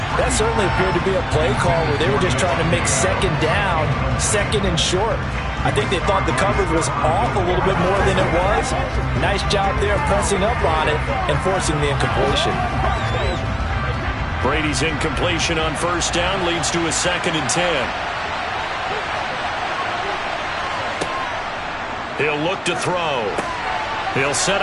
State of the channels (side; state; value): both; identical; correlation 1.00